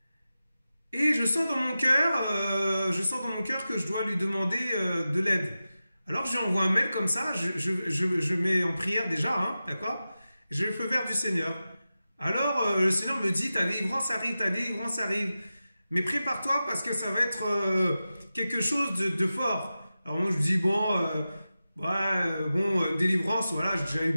Et je sens dans mon cœur que je dois lui demander de l'aide. Alors, je lui envoie un mail comme ça, je mets en prière déjà, hein, d'accord? J'ai le feu vert du Seigneur. Alors, le Seigneur me dit, ta délivrance arrive. Mais prépare-toi parce que ça va être quelque chose de fort. Alors moi, je dis, délivrance, voilà, j'ai déjà eu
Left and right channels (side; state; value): both; inverted; correlation -0.93